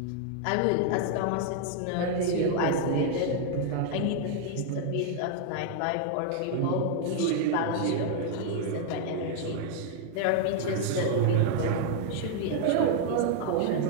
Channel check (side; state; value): both; different; correlation 0.00